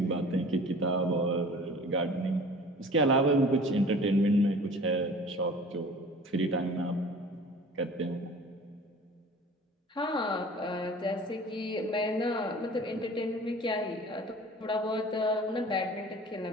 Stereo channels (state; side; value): normal; both; correlation 0.44